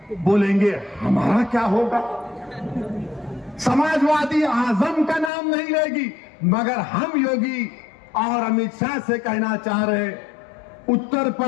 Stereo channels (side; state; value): right; drops out; at 5.3 s